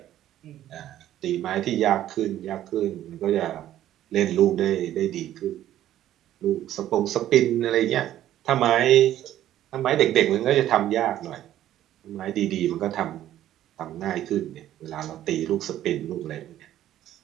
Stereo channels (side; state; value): left; quieter; 12.5 dB